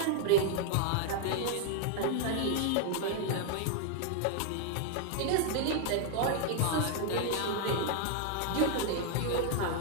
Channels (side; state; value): both; different; correlation 0.00